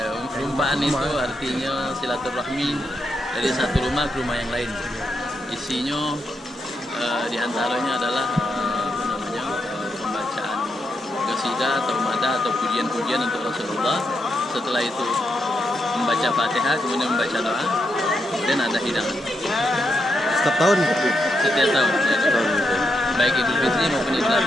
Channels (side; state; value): both; normal; correlation 0.82